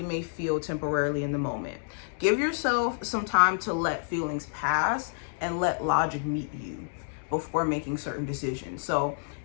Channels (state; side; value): silent; right; digital silence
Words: may feel temporarily in the moment, give yourself some time to let feelings pass and let logic meet you before making certain decisions. So